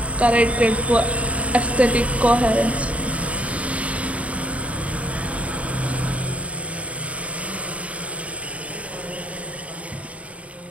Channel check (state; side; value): late; left; 0.066 ms